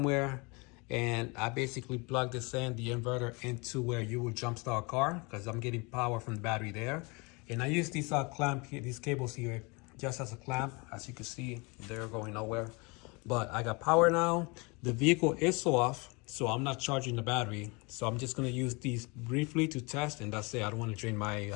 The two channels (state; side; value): quieter; right; 28.4 dB